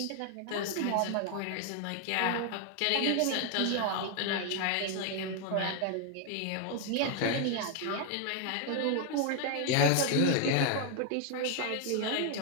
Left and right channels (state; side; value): different; both; correlation 0.00